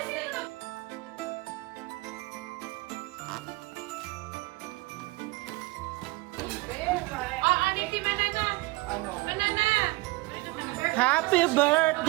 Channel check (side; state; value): left; quieter; 22.4 dB